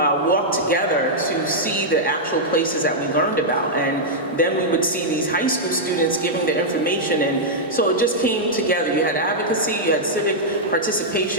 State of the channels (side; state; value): both; normal; correlation -0.07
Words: together to see the actual places that we learned about. And then we would see these high school students giving their information, and so it just came together. You had advocacy, you had civic